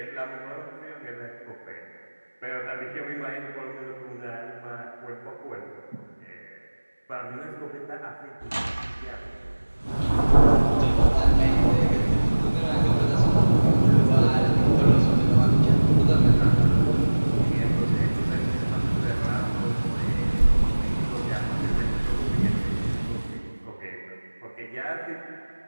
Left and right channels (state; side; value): inverted; both; correlation -1.00